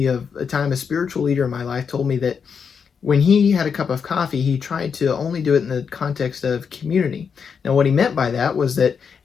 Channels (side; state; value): right; quieter; 6.4 dB